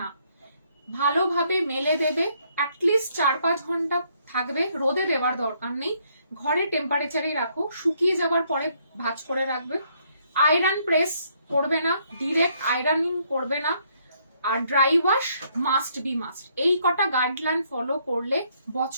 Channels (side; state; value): both; inverted; correlation -0.69